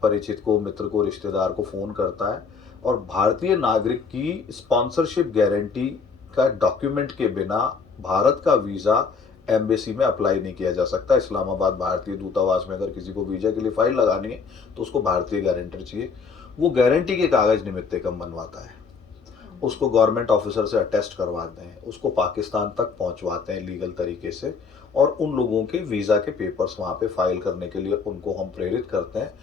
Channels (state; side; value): quieter; right; 5.3 dB